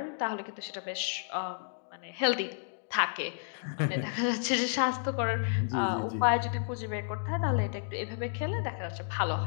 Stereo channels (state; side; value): silent; right; digital silence